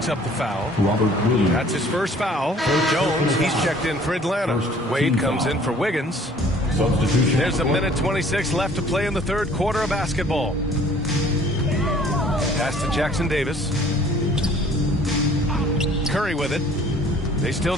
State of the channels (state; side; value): normal; both; correlation 0.54